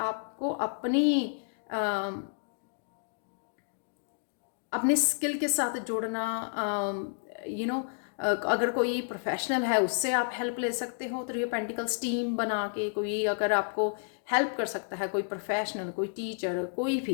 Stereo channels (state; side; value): silent; right; digital silence